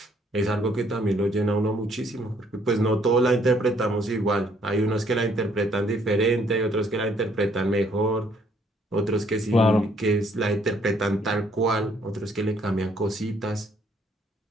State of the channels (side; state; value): both; normal; correlation 0.66